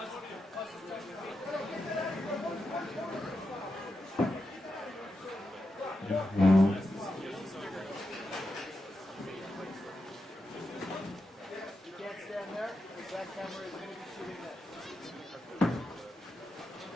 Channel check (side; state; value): both; normal; correlation 0.87